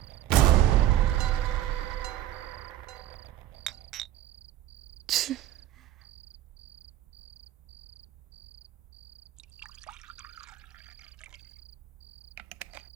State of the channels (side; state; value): left; quieter; 13.0 dB